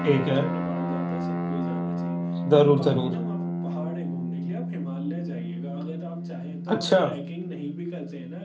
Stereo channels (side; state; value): both; identical; correlation 1.00